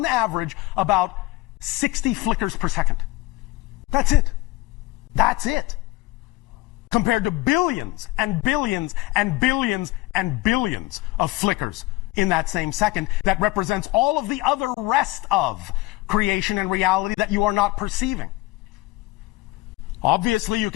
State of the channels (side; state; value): right; quieter; 20.0 dB